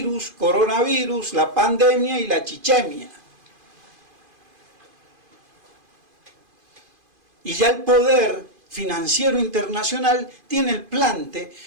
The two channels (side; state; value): left; late; 2.5 ms